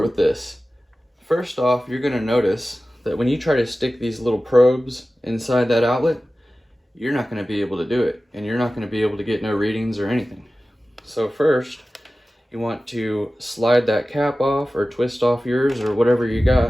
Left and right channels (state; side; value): normal; both; correlation 0.96